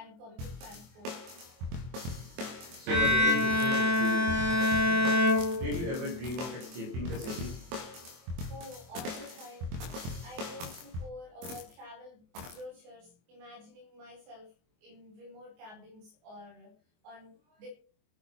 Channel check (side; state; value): left; late; 23 ms